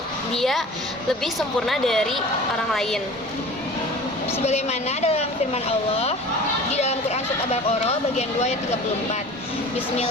dia lebih sempurna dari orang lain. Sebagaimana dalam firman Allah di dalam Quran surat Al-Baqarah bagian 2 ayat 34.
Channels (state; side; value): normal; both; correlation 0.41